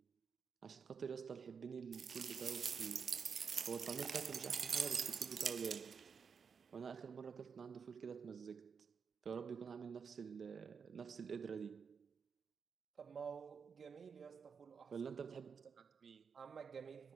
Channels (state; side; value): quieter; left; 6.1 dB